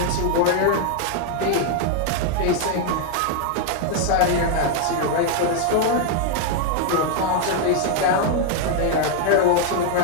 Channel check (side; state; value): both; different; correlation 0.00